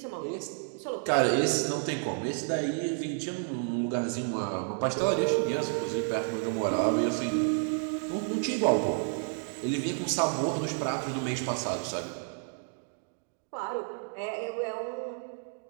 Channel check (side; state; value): left; silent; 57 dB below the other